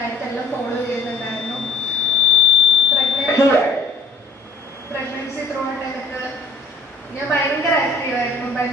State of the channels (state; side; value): quieter; right; 3.2 dB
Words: ഫോളോ ചെയ്യുന്നുണ്ടായിരുന്നു. പ്രഗ്നൻസി ത്രൂ ഔട്ട് എനിക്ക് ഞാൻ ഭയങ്കര ആക്റ്റീവായിരുന്നു,